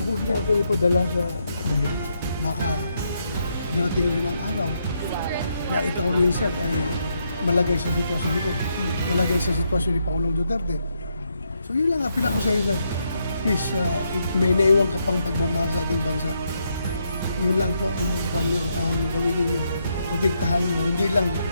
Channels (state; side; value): inverted; both; correlation -0.78